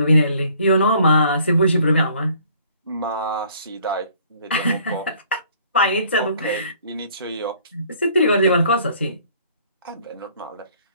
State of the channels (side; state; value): both; inverted; correlation -0.58